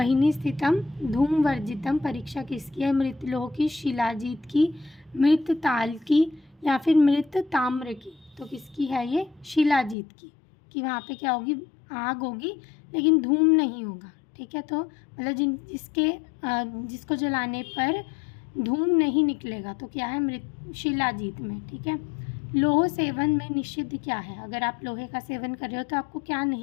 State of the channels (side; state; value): right; drops out; at 10.0 s